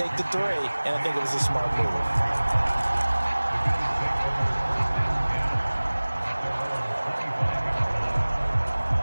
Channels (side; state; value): both; inverted; correlation -1.00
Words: the 3, and I think it was a smart move.